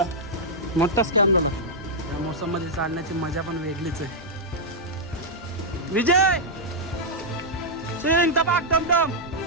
मोठा स्कॅम झाला. या मोसममध्ये चालण्याची मजा पण वेगळीच आहे. विजय सिंग टपाक टमटम.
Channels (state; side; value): normal; both; correlation -0.05